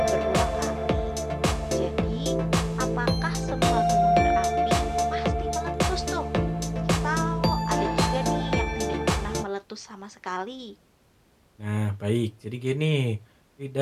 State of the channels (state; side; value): identical; both; correlation 1.00